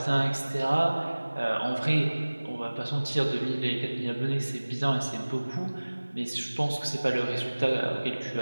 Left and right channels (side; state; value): both; inverted; correlation -1.00